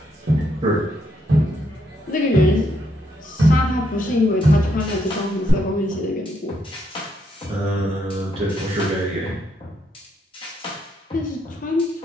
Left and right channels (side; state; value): both; normal; correlation 0.76